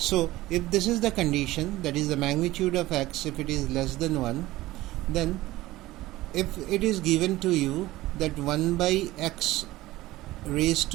if this is the condition, that is the magnitude of x, if it is less than 1, then if it is given to you that 1 by x raised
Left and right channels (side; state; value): left; quieter; 17.4 dB